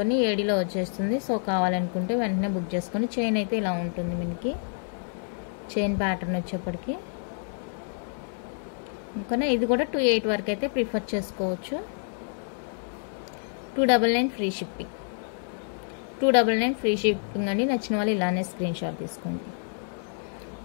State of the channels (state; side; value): silent; right; 59 dB below the other